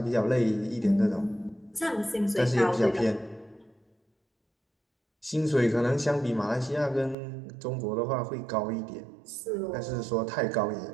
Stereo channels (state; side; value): drops out; left; at 7.2 s